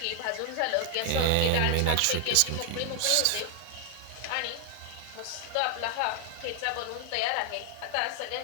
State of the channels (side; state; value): both; different; correlation 0.00